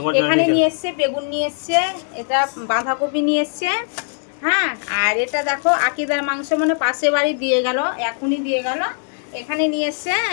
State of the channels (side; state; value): right; silent; 59 dB below the other